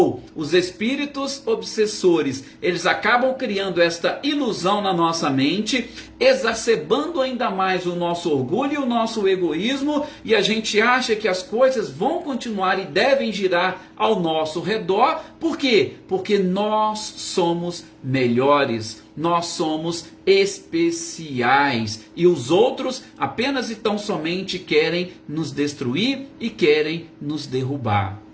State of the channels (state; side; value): identical; both; correlation 1.00